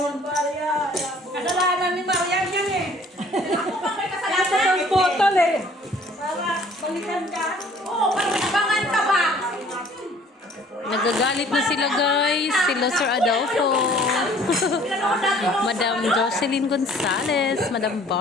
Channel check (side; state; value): both; normal; correlation 0.55